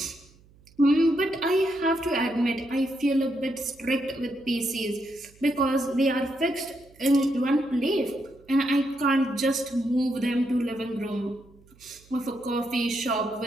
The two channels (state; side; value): noise; right; hum, 28 dB below the sound